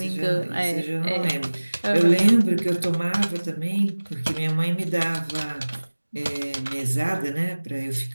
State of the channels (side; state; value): both; inverted; correlation -1.00